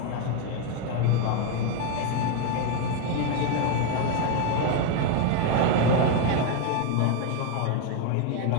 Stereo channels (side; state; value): both; different; correlation 0.01